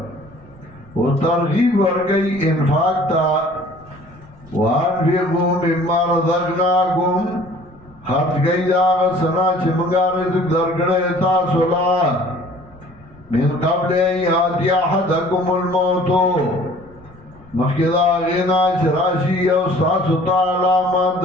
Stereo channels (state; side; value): noise; left; rumble, 27 dB below the sound